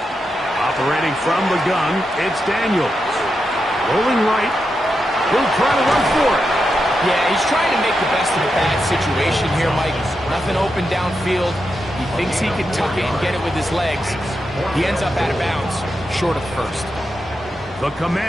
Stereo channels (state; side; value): normal; both; correlation 0.86